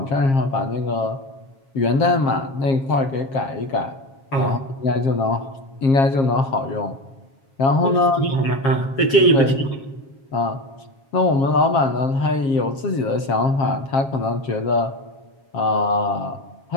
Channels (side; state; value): right; late; 7.3 ms